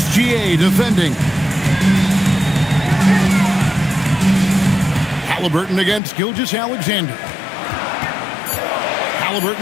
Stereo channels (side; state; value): right; drops out; at 6.0 s